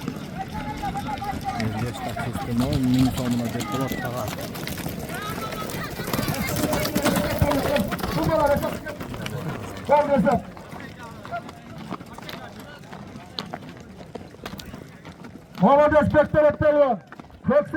Ergeç taksistin 10.000 so'muna Bek Bolat taga. Gel hesap. Marades Bek Bolat palvan.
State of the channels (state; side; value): identical; both; correlation 1.00